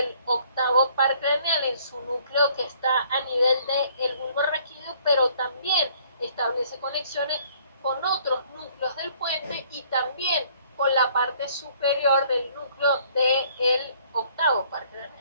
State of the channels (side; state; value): both; inverted; correlation -0.60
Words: octavo par craneal en su núcleo que está a nivel del bulbo raquídeo, pero también establece conexiones con otros núcleos del puente y también con la parte superior del núcleo del octavo par craneal